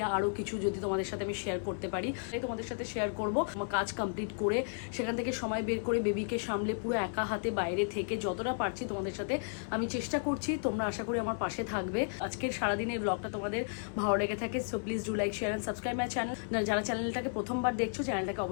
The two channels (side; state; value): right; silent; 55 dB below the other